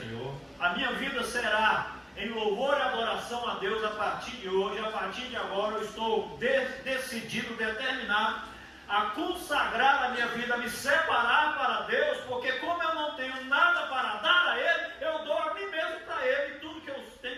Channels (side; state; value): both; identical; correlation 1.00